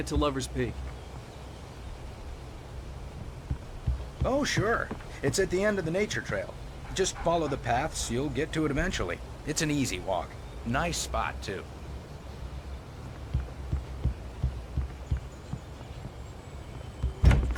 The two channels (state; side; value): identical; both; correlation 1.00